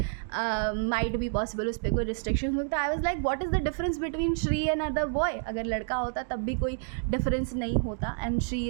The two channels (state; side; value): silent; left; digital silence